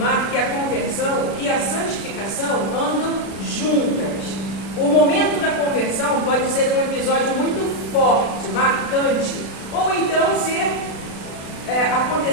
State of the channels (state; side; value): late; right; 36 ms